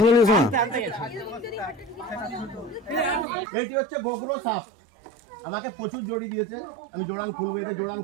নিয়েছো না এটি হচ্ছে গোগ্রো সাপ আমাকে প্রচুর জড়ি দিয়েছে আমি জোড়ান খুলবো এটা জোড়ান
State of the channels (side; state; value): left; drops out; at 3.2 s